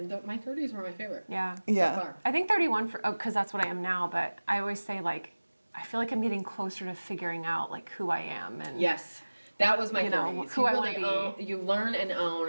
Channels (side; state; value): both; inverted; correlation -1.00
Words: my 30s were my favorite. Yeah. Yeah. So far. I think 31 because that's what I am now. But I always say like I feel like I'm getting closer to figuring out like who I am and Yes. That was my 30s. who you I wanna be. You learn and own